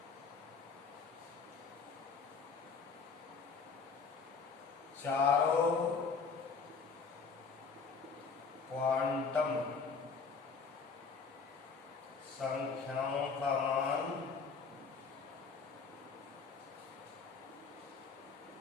चारों क्वांटम संख्याओं का मान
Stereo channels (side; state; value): right; quieter; 5.2 dB